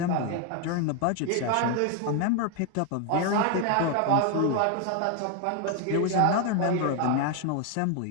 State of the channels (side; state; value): both; different; correlation 0.01